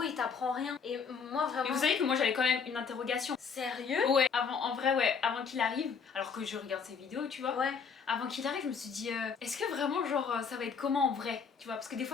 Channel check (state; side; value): quieter; right; 6.0 dB